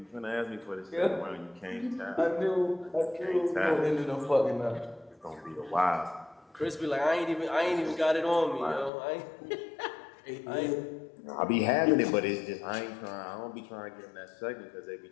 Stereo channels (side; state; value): right; drops out; at 8.9 s